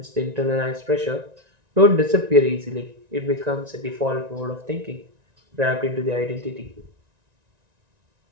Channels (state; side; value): late; left; 1.9 ms